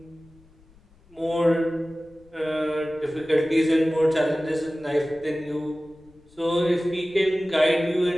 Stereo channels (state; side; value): noise; left; rumble, 29 dB below the sound